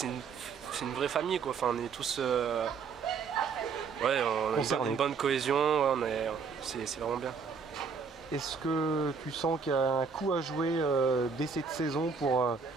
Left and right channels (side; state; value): left; quieter; 5.6 dB